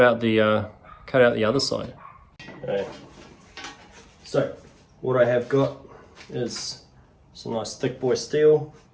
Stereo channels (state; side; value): identical; both; correlation 1.00